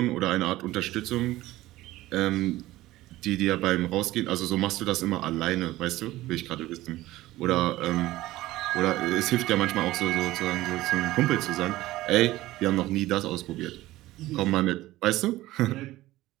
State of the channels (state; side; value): quieter; left; 16.9 dB